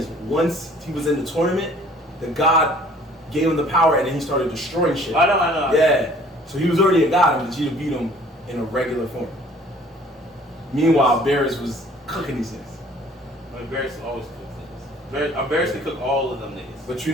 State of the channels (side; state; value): both; normal; correlation 0.54